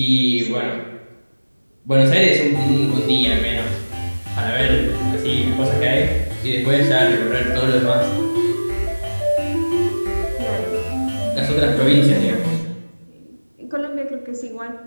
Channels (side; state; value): both; inverted; correlation -1.00